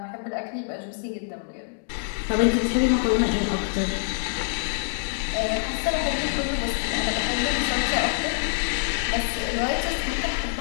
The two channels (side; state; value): right; silent; digital silence